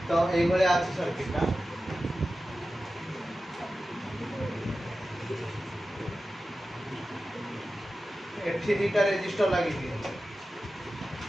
तो এই বলে আছে সার্কিটটা এফটি দুইটা রেজিস্টার লাগিয়ে দিই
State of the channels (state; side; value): normal; both; correlation 0.94